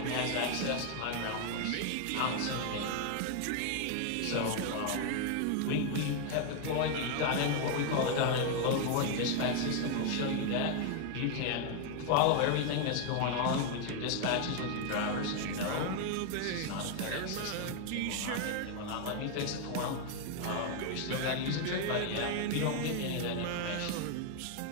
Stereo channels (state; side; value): different; both; correlation 0.01